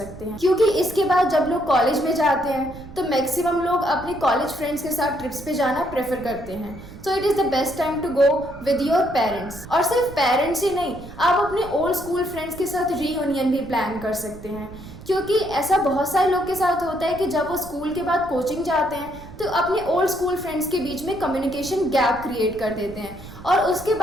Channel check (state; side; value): noise; right; rumble, 16 dB below the sound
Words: हैं क्योंकि इसके बाद जब लोग कॉलेज में जाते हैं तो मैक्सिमम लोग अपने कॉलेज फ्रेंड्स के साथ ट्रिप्स पे जाना प्रेफर करते हैं। So it is the best time to go with your parents. और सिर्फ पेरेंट्स ही नहीं, आप अपने ओल्ड स्कूल फ्रेंड्स के साथ रीयूनियन भी प्लान कर सकते हैं क्योंकि ऐसा बहुत सारे लोग के साथ होता है कि जब वो स्कूल के बाद कोचिंग जाते हैं तो अपने ओल्ड स्कूल फ्रेंड्स के बीच में कम्युनिकेशन गैप क्रिएट कर देते हैं और उसके